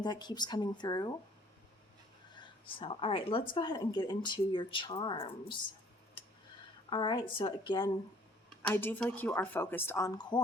that keeps coming through. So, all right, let's go ahead and get into your charms. All right, so again, I do feel like you are focused on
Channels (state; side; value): normal; both; correlation 0.57